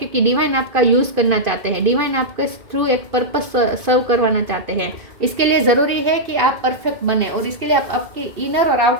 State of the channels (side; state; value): left; late; 2.6 ms